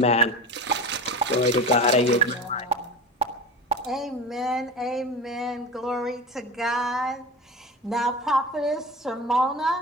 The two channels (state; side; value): normal; both; correlation 0.30